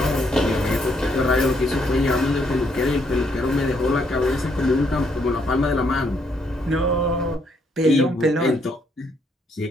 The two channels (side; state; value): both; normal; correlation 0.72